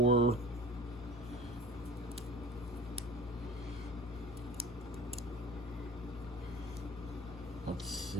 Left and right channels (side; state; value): both; normal; correlation 0.41